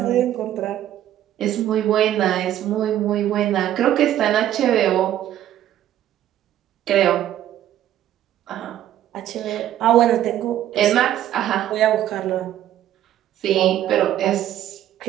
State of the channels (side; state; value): left; quieter; 12.1 dB